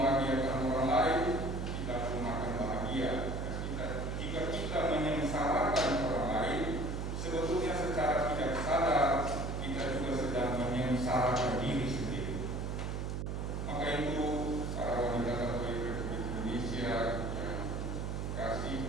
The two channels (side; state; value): right; noise; hum, 3 dB below the sound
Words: orang lain, kita pun akan bahagia. Jika kita menyengsarakan orang lain, sebetulnya secara tidak sadar kita juga sedang menyengsarakan diri sendiri. Maka itu, para wanita Katolik Republik Indonesia yang